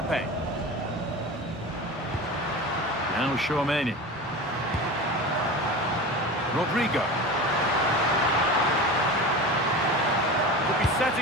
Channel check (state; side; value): normal; both; correlation 0.30